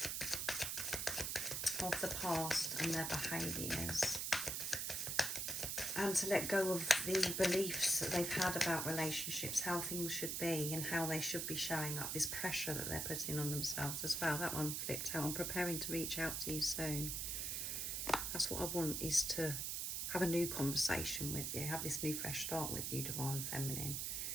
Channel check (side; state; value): right; noise; hiss, 1 dB below the sound